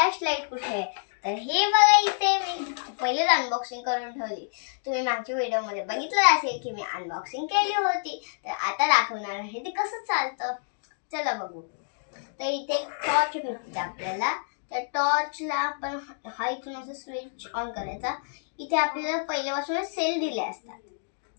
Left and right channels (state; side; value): silent; right; digital silence